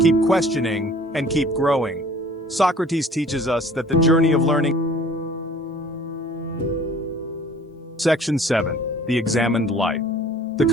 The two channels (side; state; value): both; normal; correlation 0.51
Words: questioning, and keep growing. Socrates teaches us that the journey of learning. Section 7. The Examined Life. The